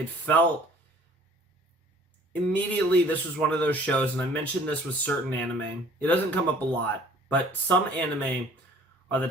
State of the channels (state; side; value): normal; both; correlation 0.52